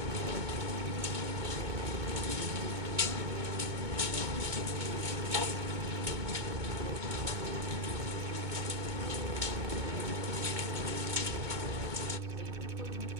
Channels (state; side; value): late; left; 2.2 ms